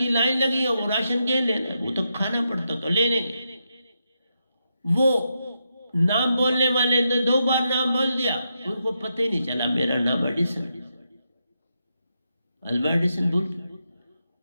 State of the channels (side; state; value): both; inverted; correlation -0.84